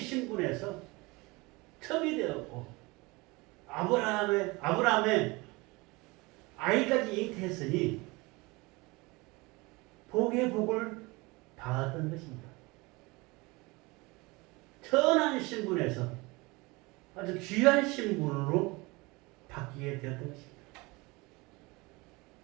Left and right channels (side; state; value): left; quieter; 24.3 dB